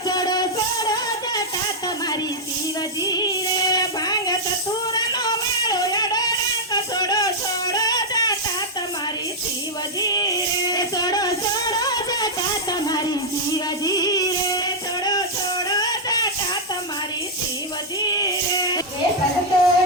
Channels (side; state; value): both; normal; correlation -0.04